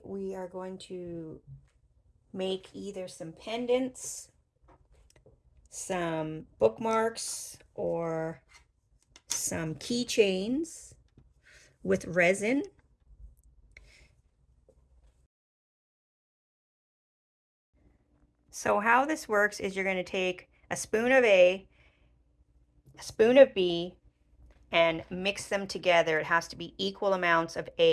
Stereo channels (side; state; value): both; identical; correlation 1.00